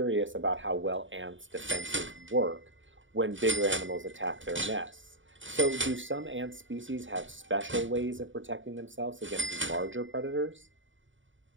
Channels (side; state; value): left; late; 0.56 ms